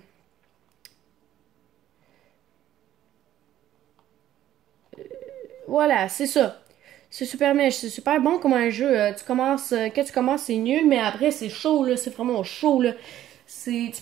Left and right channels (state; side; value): quieter; left; 12.6 dB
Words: Voilà, c'est ça. C'est super mèche, c'est super bon comme un jeu. Tu commences, quand tu commences, c'est nul, mais après, c'est chaud, là. C'est vraiment chaud, là. Tu